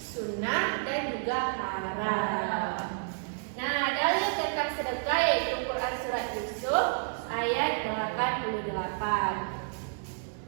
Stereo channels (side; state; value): left; silent; digital silence